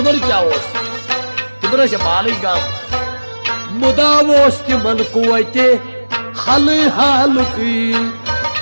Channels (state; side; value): inverted; both; correlation -1.00